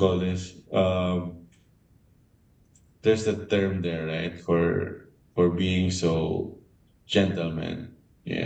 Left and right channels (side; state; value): both; identical; correlation 1.00